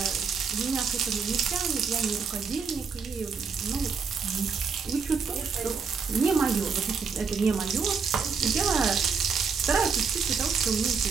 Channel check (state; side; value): quieter; left; 5.6 dB